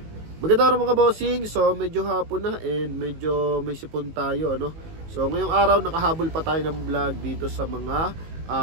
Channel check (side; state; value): left; late; 19 ms